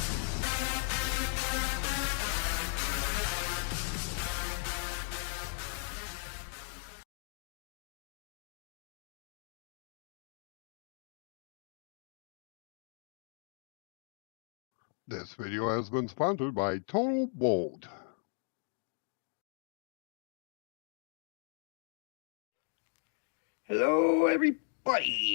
This video has been sponsored by trytotalb. Hello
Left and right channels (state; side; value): silent; right; 53 dB below the other